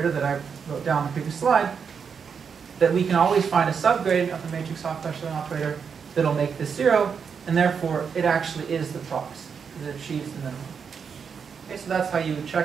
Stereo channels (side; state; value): left; quieter; 6.4 dB